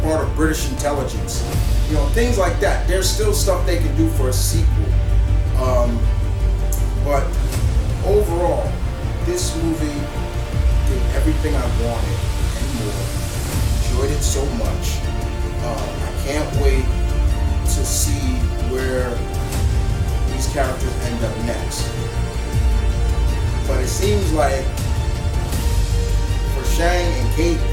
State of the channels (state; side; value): identical; both; correlation 1.00